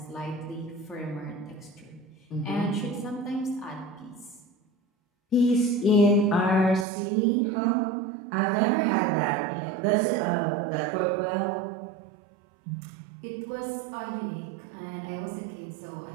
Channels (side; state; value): left; drops out; at 6.9 s